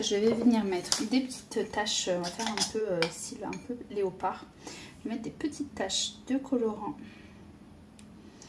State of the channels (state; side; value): identical; both; correlation 1.00